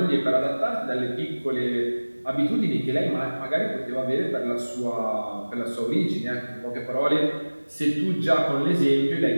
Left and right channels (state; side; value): inverted; both; correlation -1.00